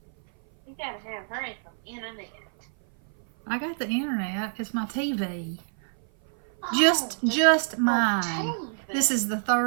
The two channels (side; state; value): left; silent; 57 dB below the other